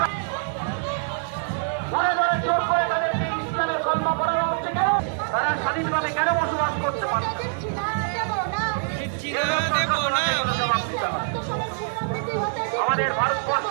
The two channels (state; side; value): silent; left; digital silence